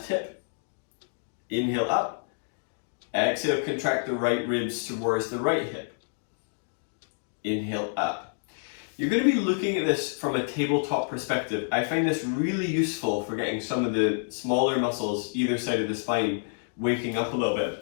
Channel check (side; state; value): right; silent; digital silence